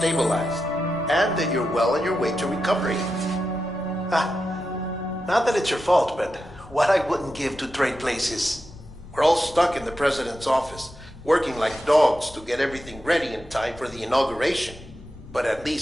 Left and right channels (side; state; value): both; normal; correlation 0.89